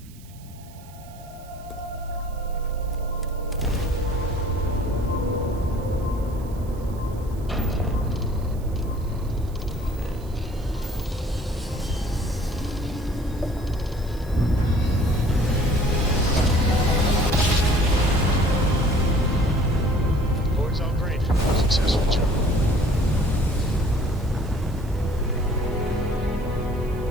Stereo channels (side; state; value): right; noise; hiss, 24 dB below the sound